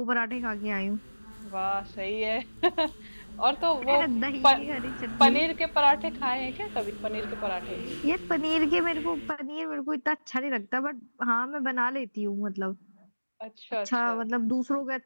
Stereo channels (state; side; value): inverted; both; correlation -1.00